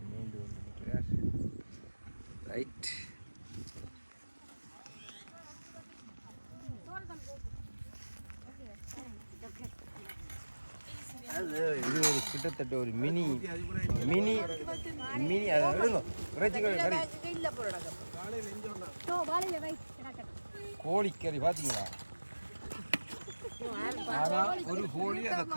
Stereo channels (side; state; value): both; inverted; correlation -1.00